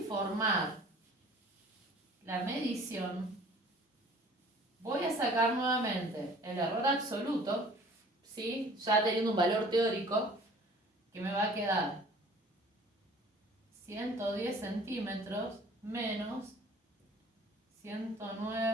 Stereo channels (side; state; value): both; normal; correlation 0.50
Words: la medición, voy a sacar nuevamente el error absoluto, ¿sí? Ya teniendo un valor teórico, que me va a quedar 110 centímetros menos